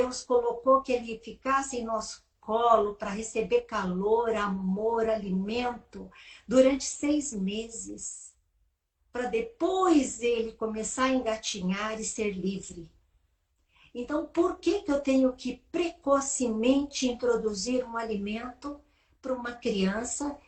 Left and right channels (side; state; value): both; identical; correlation 1.00